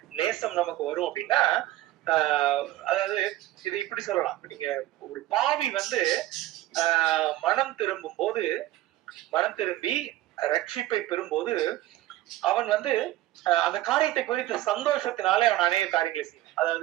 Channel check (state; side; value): quieter; left; 15.5 dB